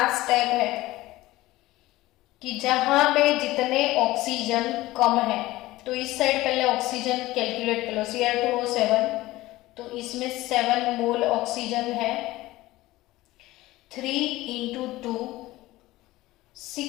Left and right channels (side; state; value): right; quieter; 17.8 dB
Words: स्टेप है कि जहां पे जितने ऑक्सीजन कम है, तो इस साइड पहले ऑक्सीजन कैलकुलेट कर लो, Cr2O7, तो इसमें 7 मोल ऑक्सीजन है, 3 into 2